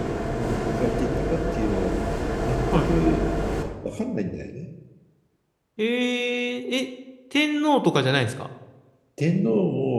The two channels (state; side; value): identical; both; correlation 1.00